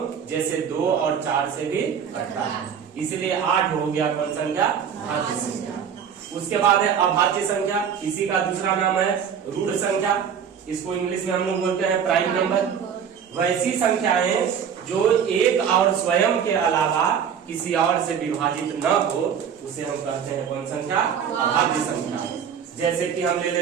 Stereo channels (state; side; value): quieter; left; 7.7 dB